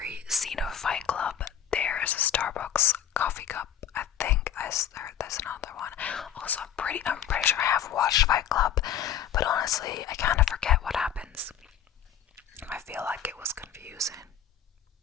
scene of Fight Club, there is a Starbucks coffee cup. I think there's another one. Also, I'm pretty sure I have watched Fight Club, but honestly, I kind of forget what happens. I feel like it was confusing.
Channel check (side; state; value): right; quieter; 9.5 dB